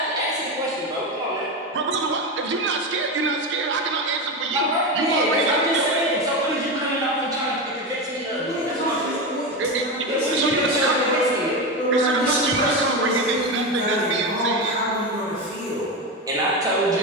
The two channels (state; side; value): normal; both; correlation 0.17